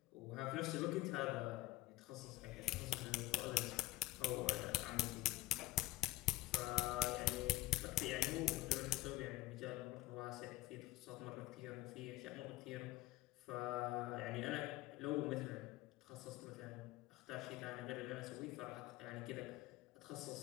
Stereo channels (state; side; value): quieter; right; 17.3 dB